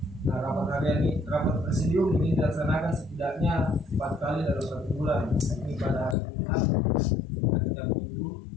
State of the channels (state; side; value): drops out; right; at 6.2 s